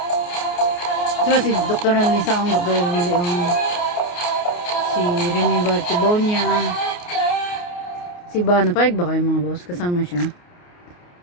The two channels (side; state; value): right; late; 28 ms